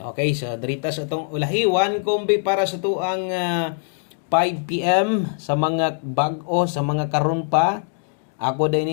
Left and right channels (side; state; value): right; silent; digital silence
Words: so direktas atong ulahi 1 kombe para sa to ang 5 PM sa mga bag-o sa mga karon pa ako